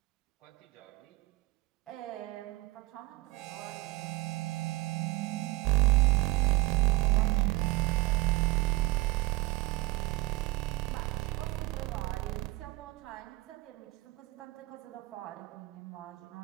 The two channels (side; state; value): left; quieter; 20.4 dB